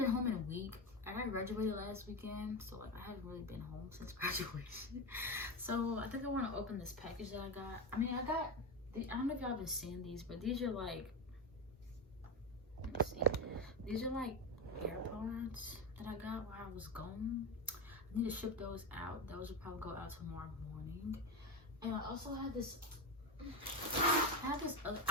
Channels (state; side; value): normal; both; correlation 0.15